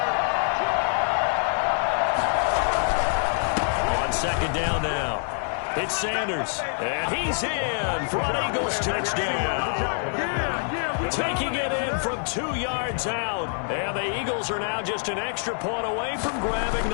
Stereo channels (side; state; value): right; silent; 60 dB below the other